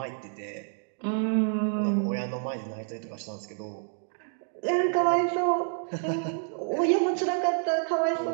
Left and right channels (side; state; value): left; silent; 59 dB below the other